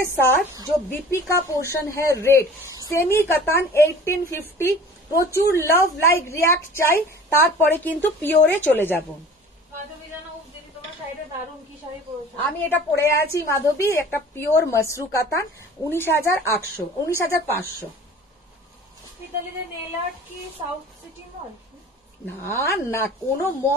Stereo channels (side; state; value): both; normal; correlation 0.44